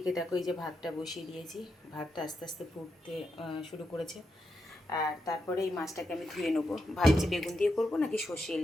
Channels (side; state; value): both; normal; correlation 0.85